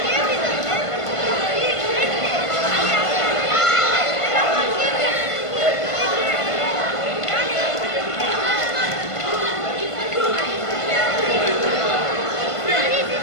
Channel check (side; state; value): right; late; 1.5 ms